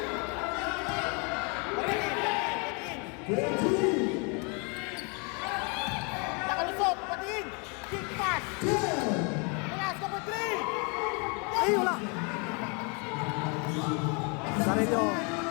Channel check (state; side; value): quieter; right; 33.8 dB